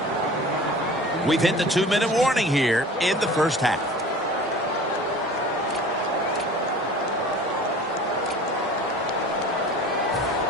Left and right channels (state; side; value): normal; both; correlation 0.42